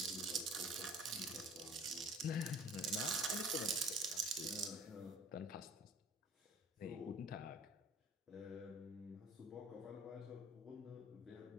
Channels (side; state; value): both; normal; correlation 0.47